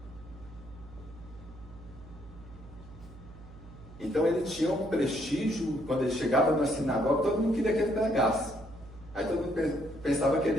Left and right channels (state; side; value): noise; right; hum, 18 dB below the sound